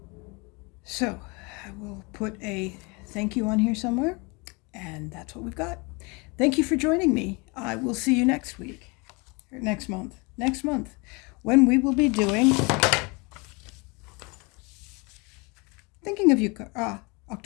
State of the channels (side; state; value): right; quieter; 28.8 dB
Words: So, I will put a thank you on here somewhere, and that's what we've got. Thank you for joining me. I will see you next week, or next month, when we will be doing Thinking of You,